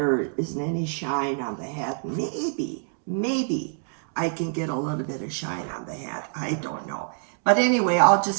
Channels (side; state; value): left; silent; digital silence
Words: isn't any shine on the hat. Maybe I can get a little bit of shine on the hat. I don't know. But anyway, I'll